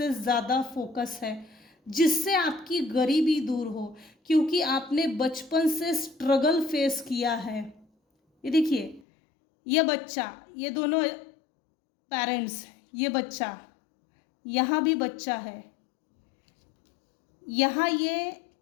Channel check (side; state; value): right; drops out; at 9.0 s